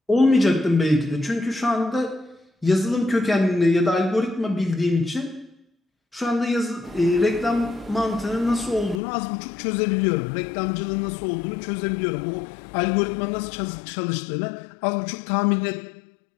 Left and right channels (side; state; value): right; drops out; at 9.0 s